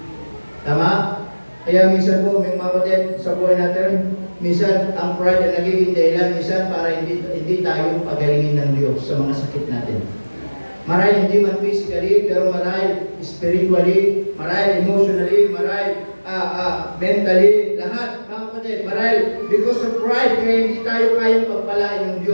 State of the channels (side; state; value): both; inverted; correlation -1.00